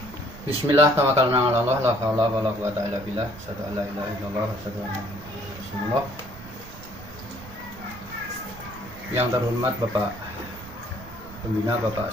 Bismillah, tawakkalna 'ala Allah, la haula wala quwata illa billah, asyhadu an la ilaha illallah wa asyhadu anna Muhammadar Rasulullah. Yang terhormat Bapak Pembina Bapak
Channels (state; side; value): noise; right; rumble, 17 dB below the sound